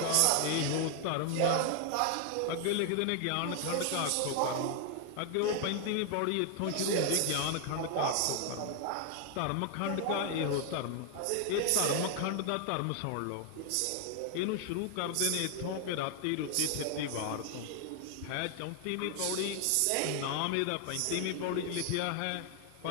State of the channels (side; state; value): both; different; correlation 0.00